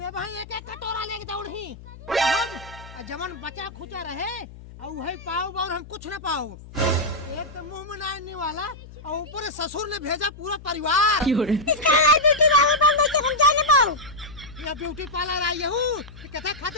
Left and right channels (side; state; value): left; noise; hum, 17 dB below the sound